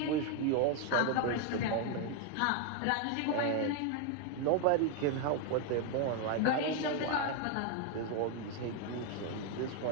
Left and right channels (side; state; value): both; different; correlation 0.01